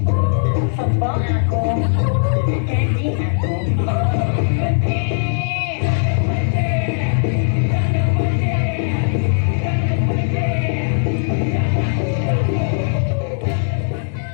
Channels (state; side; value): silent; right; digital silence